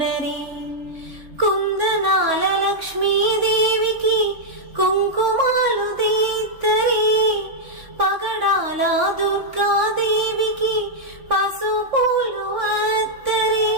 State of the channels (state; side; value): late; left; 3.6 ms